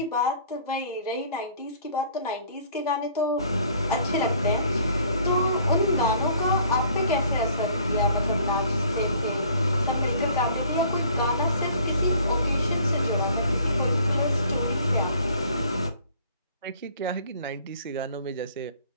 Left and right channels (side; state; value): both; inverted; correlation -0.55